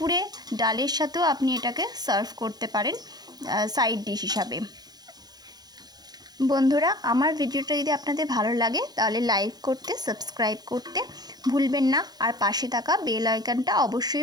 ডালের সাথেও আপনি এটাকে সার্ভ করতে পারেন সাইড ডিশ হিসাবে। বন্ধুরা, আমার ভিডিওটা যদি আপনাদের ভালো লাগে তাহলে লাইক করতে, সাবস্ক্রাইব করতে ভুলবেন না, আর পাশে থাকা বেল আইকনটা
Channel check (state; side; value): late; left; 0.19 ms